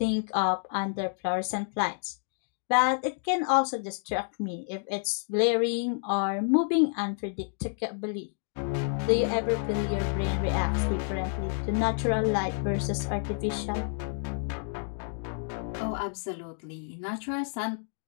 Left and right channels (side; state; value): right; silent; digital silence